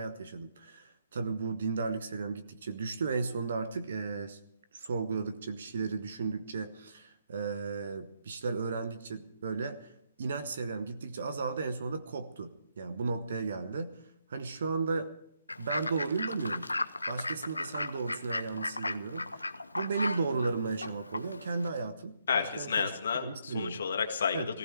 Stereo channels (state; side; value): inverted; both; correlation -0.76